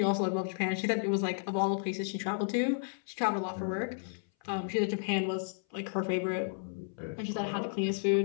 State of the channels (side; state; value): right; silent; 56 dB below the other